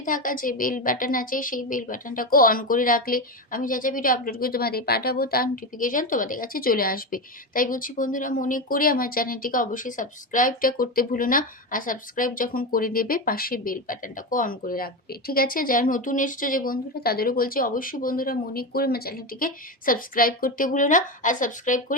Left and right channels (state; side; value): normal; both; correlation 0.17